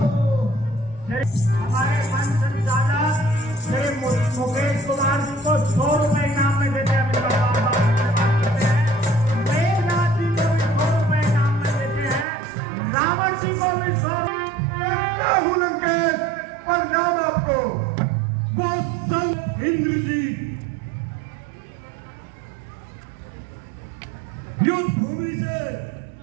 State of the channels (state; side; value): drops out; left; at 12.2 s